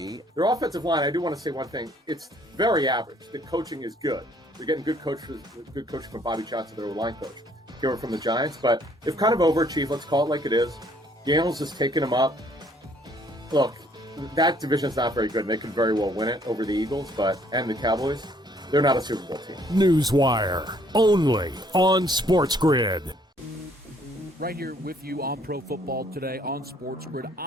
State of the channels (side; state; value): both; normal; correlation 0.63